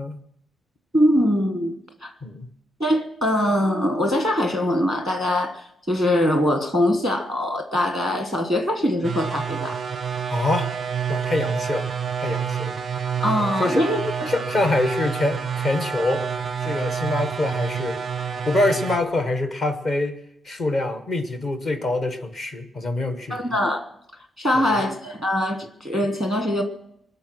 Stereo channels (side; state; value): both; normal; correlation 0.78